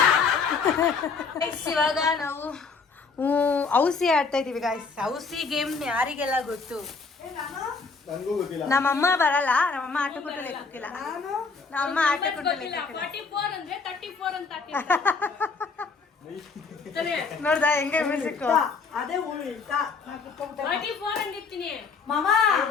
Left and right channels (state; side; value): quieter; right; 4.8 dB